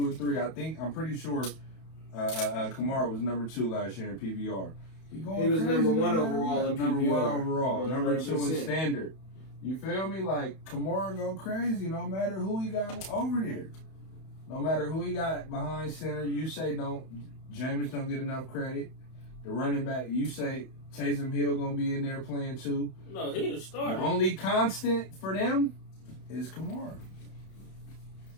and 3. I'm pretty sure Kamara was number 2 last year in PBR. He was number 1 overall in PBR. Number 1 overall. Number 2 in 100%. standard. You feel me? Like Kamara go crazy no matter who he got over there. No matter who he got behind center, you say Jameis don't get enough credit. The running back, you say Taysom Hill gonna be in there playing too. No, he the starter. The only constant for them is Kamara.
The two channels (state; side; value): late; right; 31 ms